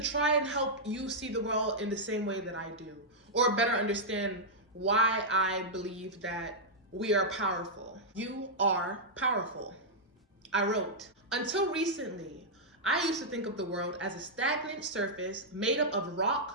and help you see the world in the same way that I do, or better understand why I believe that we are powerful. You are powerful. I wrote, until recently, I used to think of the world as a stagnant surface made up of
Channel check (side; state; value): both; normal; correlation -0.07